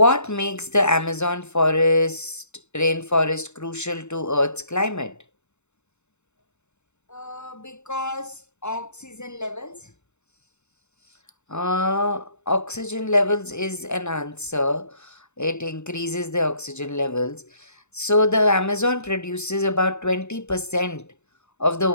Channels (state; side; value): late; right; 0.82 ms